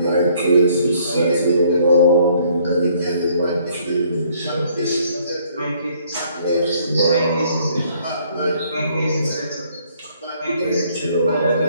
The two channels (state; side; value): inverted; both; correlation -0.64